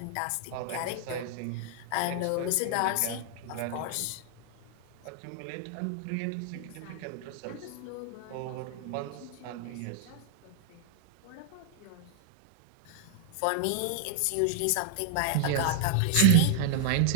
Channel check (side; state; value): both; different; correlation 0.00